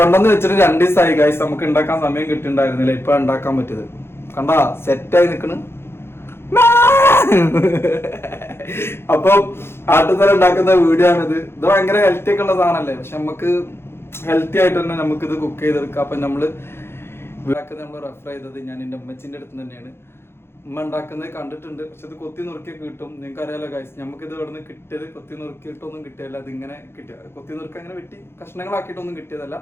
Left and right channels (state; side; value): late; right; 0.12 ms